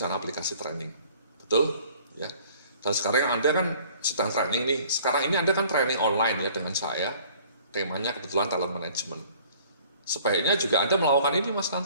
aplikasi training. Betul? Ya. Dan sekarang Anda kan sedang training nih, sekarang ini Anda kan training online ya dengan saya, temanya kebetulan talent management. Sebaiknya juga Anda melakukan ini Mas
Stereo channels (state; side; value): inverted; both; correlation -0.53